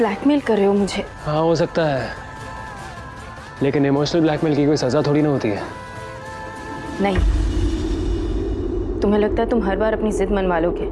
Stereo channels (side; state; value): both; identical; correlation 1.00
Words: कर रहे हो मुझे? हाँ हो सकता है, लेकिन इमोशनल ब्लैकमेल की कोई सजा थोड़ी ना होती है। नहीं, तुम्हें लगता है तुम हर बार अपनी जिद मनवा लोगे,